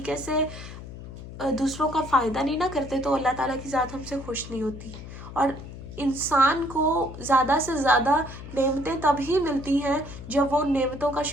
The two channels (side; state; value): left; noise; hum, 13 dB below the sound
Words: से दूसरों का फ़ायदा नहीं ना करते तो अल्लाह ताला की ज़ात हमसे खुश नहीं होती। और इंसान को ज़्यादा से ज़्यादा नेमतें तभी मिलती हैं जब वो नेमतों का